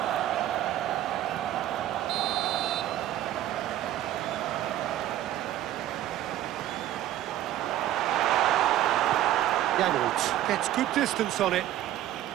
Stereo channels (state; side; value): quieter; left; 13.0 dB